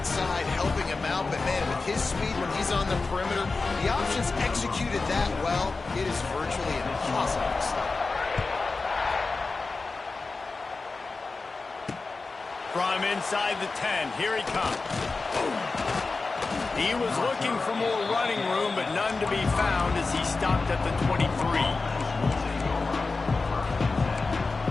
helping him out, but, man, with his speed when he's on the perimeter, the options executed that well. It is virtually impossible to stop. From inside the 10, here he comes. He was looking for more running room, but none to be found as he stopped at the 23.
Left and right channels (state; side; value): quieter; right; 3.9 dB